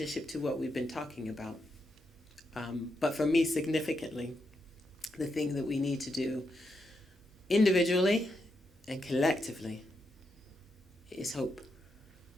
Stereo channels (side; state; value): both; normal; correlation 0.83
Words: to what we've been talking about. But for me, significantly, the thing that we need to do individually and collectively is hope.